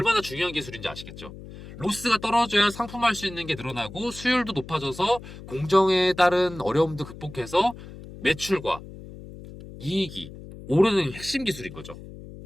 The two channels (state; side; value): noise; left; hum, 15 dB below the sound